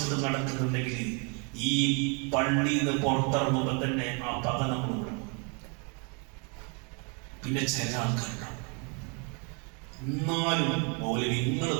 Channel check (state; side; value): quieter; left; 35.3 dB